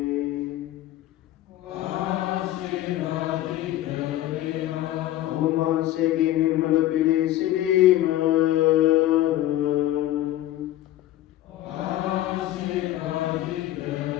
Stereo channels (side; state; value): right; quieter; 14.1 dB